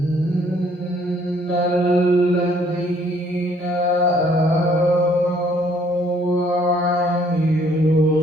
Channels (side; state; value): both; normal; correlation 0.63